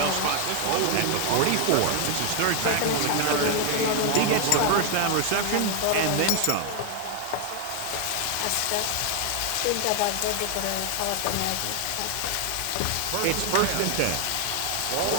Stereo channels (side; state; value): both; different; correlation 0.00